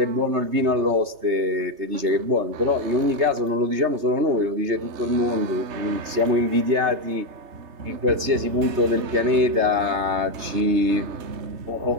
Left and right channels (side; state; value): left; late; 3.3 ms